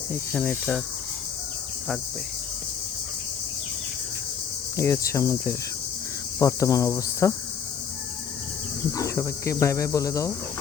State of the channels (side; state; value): right; quieter; 7.3 dB